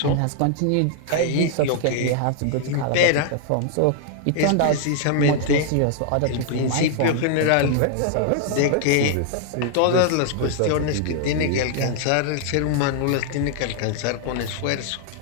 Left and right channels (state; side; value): different; both; correlation 0.00